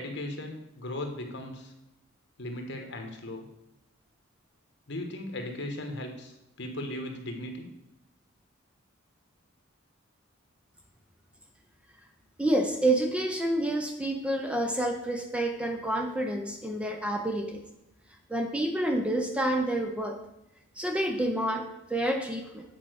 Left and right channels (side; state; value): both; normal; correlation 0.64